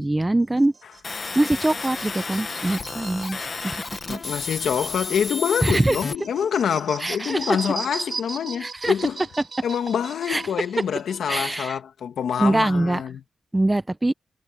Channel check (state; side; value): normal; both; correlation 0.88